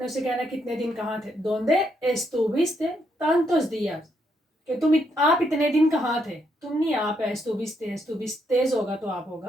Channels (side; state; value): both; normal; correlation 0.76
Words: उसे कहना कितने दिन कहाँ थे, donde estuviste tantos días, कि आप इतने दिन कहाँ थे, तुम नहीं आप है, estuviste होगा तो आप